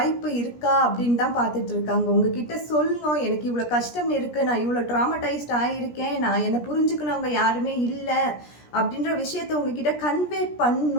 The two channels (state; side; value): late; right; 17 ms